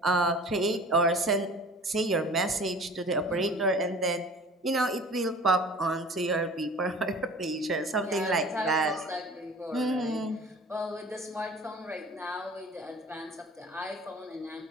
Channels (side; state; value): both; normal; correlation 0.44